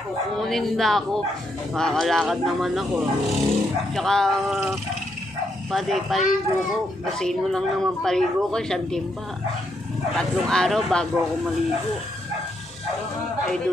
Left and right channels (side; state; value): both; normal; correlation 0.78